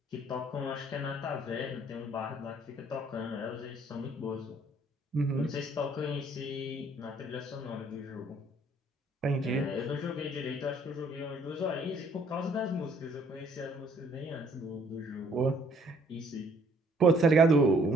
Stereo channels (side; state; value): both; normal; correlation 0.62